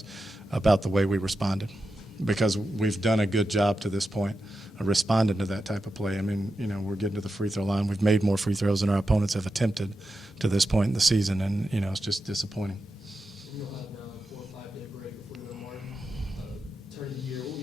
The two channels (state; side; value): normal; both; correlation 0.89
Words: about the way we responded, because we've done a good job to this point of responding to that type of play. I mean, we're getting to the free throw line. We've made more free throws than our opponents have attempted to this point in the season, and, it's just disappointing. You'll have now a 4 or 5 day break before you go to Martin. Turn the year. What will